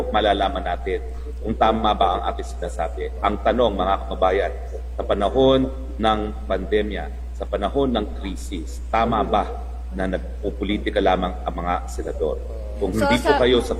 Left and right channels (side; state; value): both; identical; correlation 1.00